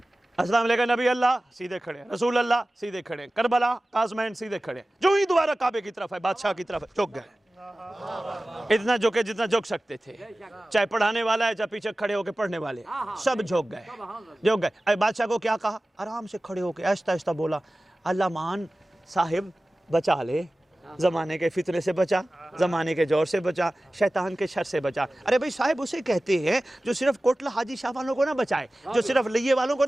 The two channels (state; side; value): normal; both; correlation 0.97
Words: السلام علیکم نبی اللہ, سیدھے کھڑے. رسول اللہ, سیدھے کھڑے. کربلا, قاسمین, سیدھے کھڑے. جو ہی دوبارہ کعبے کی طرف ہے, بادشاہ کی طرف ہے, جھک گئے. اتنا جھکے جتنا جھک سکتے تھے. چاہے پڑھانے والا ہے, چاہے پیچھے کھڑے ہو کے پڑھنے والے, سب جھک گئے. جھک گئے. بادشاہ کو کیا کہا؟ آرام سے کھڑے ہو کے آہستہ آہستہ بولا, اللہ مان صاحب بچا لے, زمانے کے فتنے سے بچا, زمانے کے جور سے بچا, شیطان کے شر سے بچا. ارے بھئی صاحب اسے کہتے ہیں جو صرف کوٹلہ حاجی شاہ والوں کو نہ بچائے, جو صرف لیے والوں کو